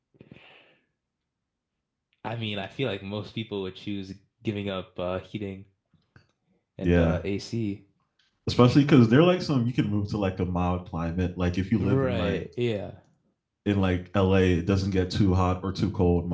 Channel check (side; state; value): both; identical; correlation 1.00